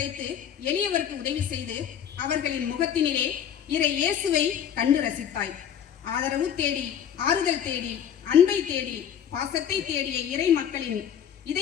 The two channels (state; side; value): quieter; right; 9.0 dB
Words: எளியவருக்கு உதவி செய்து அவர்களின் முகத்தினிலே இறை இயேசுவை கண்டு ரசித்தாய். ஆதரவு தேடி, ஆறுதல் தேடி, அன்பை தேடி, பாசத்தை தேடிய இறை மக்களின்